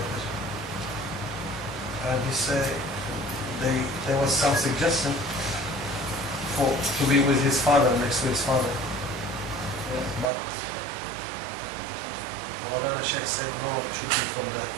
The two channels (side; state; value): left; drops out; at 10.2 s